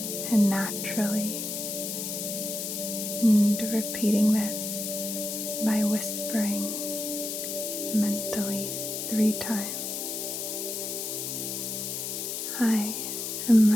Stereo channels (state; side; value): noise; left; hiss, 4 dB below the sound